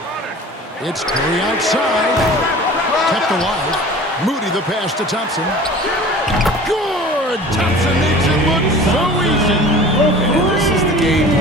It's Curry outside. Kept alive. Moody the pass to Thompson. Good! Thompson makes it look so easy. And this is the game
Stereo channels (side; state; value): both; normal; correlation 0.41